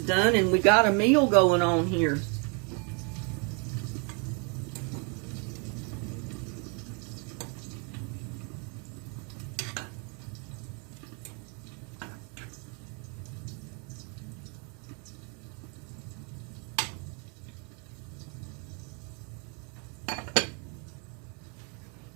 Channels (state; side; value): quieter; left; 35.4 dB